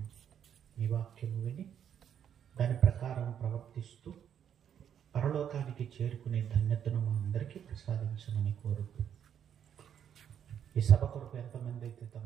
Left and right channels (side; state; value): left; quieter; 8.9 dB